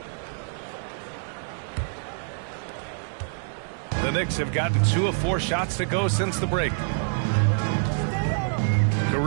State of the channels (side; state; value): left; silent; 61 dB below the other